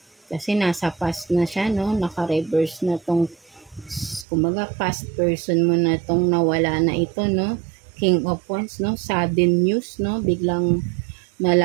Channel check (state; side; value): drops out; left; at 4.2 s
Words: Kasi nasa past na siya, no. Naka-reverse na tong, kumbaga, past person mo na tong nawala na ito, no. King of Wands, no? Sudden news, no? Biglang